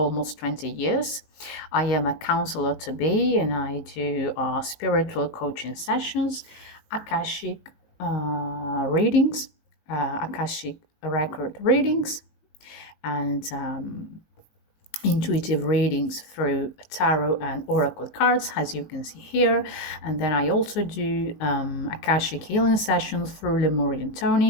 20 years. I am a counselor to be, and I do spiritual coaching sessions, Akashic readings, Akashic record readings, and intuitive readings through tarot and oracle cards, as you can see here. And then I also do Akashic healing sessions through Lemurian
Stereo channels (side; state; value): right; late; 19 ms